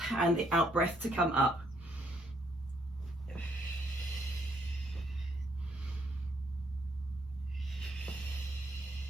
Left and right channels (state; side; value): normal; both; correlation 0.71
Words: and the out breath to come up.